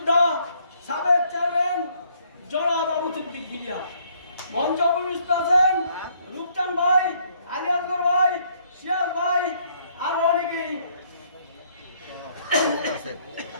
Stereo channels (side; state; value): both; inverted; correlation -0.67